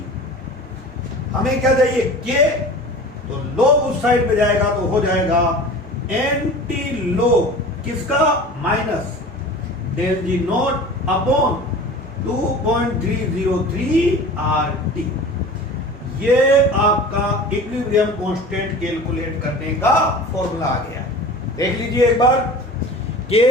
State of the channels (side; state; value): both; normal; correlation 0.39